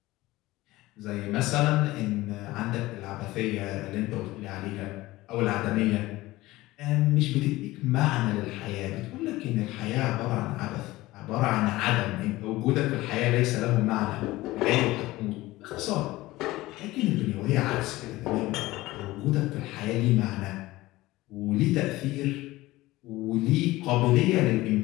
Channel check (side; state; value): right; quieter; 18.4 dB